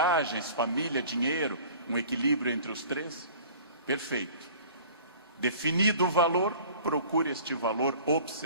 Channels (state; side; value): inverted; both; correlation -0.46